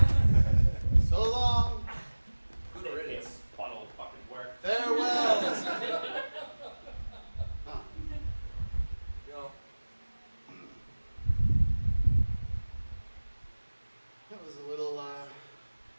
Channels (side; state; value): both; inverted; correlation -1.00